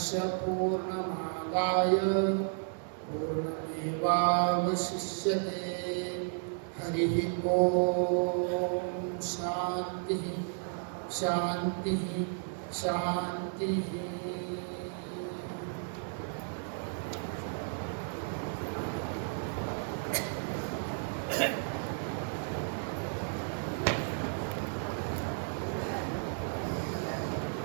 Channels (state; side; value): silent; left; 56 dB below the other